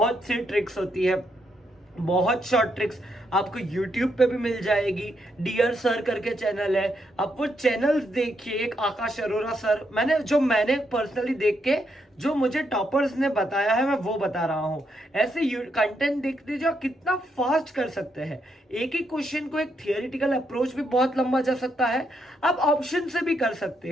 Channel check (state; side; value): normal; both; correlation 0.78